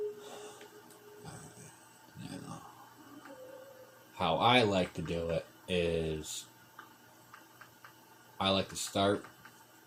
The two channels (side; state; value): both; identical; correlation 1.00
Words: Now, how I like to do it is I like to start